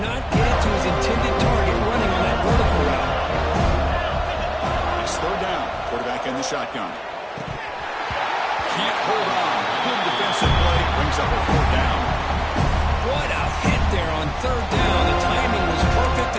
not get it to his intended target running on that vertical route. It's third down. Quarterback in the shotgun. Can't hold on. Good defensive play. Brings up a fourth down. What a hit there on third down. The timing was perfect,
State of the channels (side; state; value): both; identical; correlation 1.00